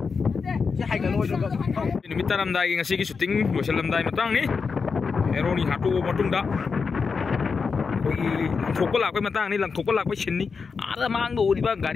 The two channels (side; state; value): right; quieter; 5.2 dB